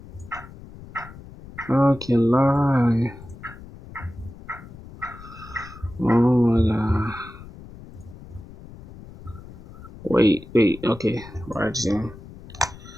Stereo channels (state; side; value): noise; left; rumble, 17 dB below the sound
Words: I can lie. Oh my god. Wait, okay, right here.